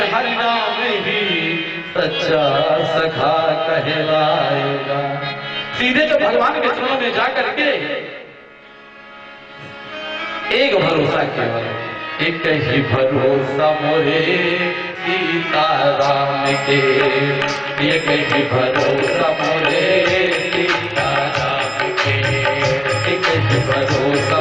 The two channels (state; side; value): identical; both; correlation 1.00